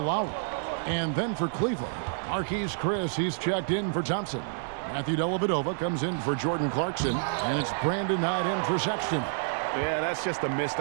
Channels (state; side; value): silent; left; 59 dB below the other